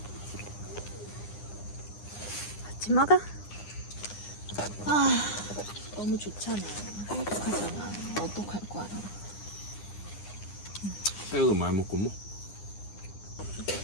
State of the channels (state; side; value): late; right; 9.8 ms